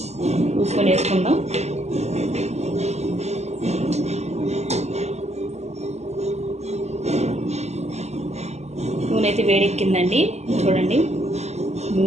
చూసుకొని వేసుకుందాం. నూనె అయితే వేడెక్కిందండి. చూడండి,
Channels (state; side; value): late; left; 0.32 ms